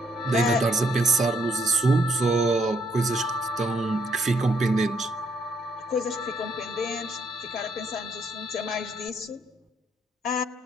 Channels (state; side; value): normal; both; correlation 0.70